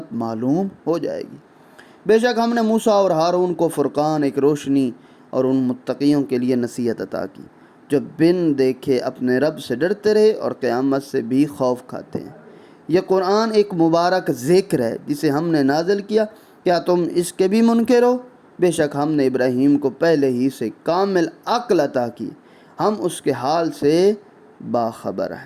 معلوم ہو جائے گی۔ بے شک ہم نے موسیٰ اور ہارون کو فرقان، ایک روشنی اور ان متقیوں کے لیے نصیحت عطا کی جو بن دیکھے اپنے رب سے ڈرتے رہے اور قیامت سے بھی خوف کھاتے ہیں۔ یہ قرآن ایک مبارک ذکر ہے جسے ہم نے نازل کیا، کیا تم اس کے بھی منکر ہو؟ بے شک ہم نے ابراہیم کو پہلے ہی سے کامل عقل عطا کی، ہم اس کے حال سے باخبر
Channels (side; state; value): both; identical; correlation 1.00